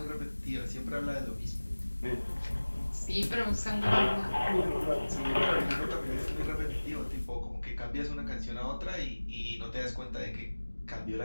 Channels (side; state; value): both; inverted; correlation -1.00